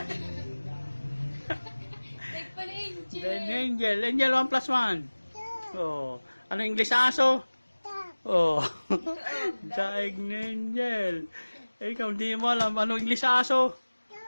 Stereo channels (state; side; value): inverted; both; correlation -1.00